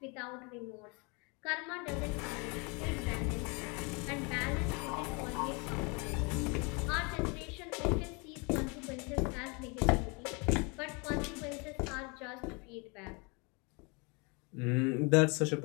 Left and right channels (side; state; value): right; quieter; 30.9 dB